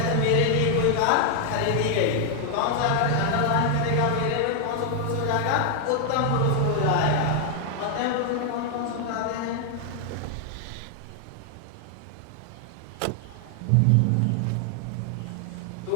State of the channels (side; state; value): both; different; correlation 0.00